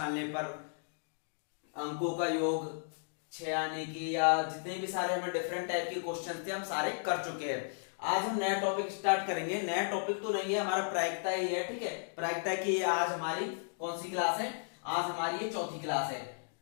पर अंकों का योग 6 आने की, या जितने भी सारे हमें डिफरेंट टाइप के क्वेश्चन थे हम सारे कर चुके हैं। आज हम नया टॉपिक स्टार्ट करेंगे। नया टॉपिक तो नहीं है, हमारा प्रायिकता ही है। ठीक है, प्रायिकता की आज हमारी कौन सी क्लास है? आज हमारी ये चौथी क्लास है।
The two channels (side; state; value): right; silent; digital silence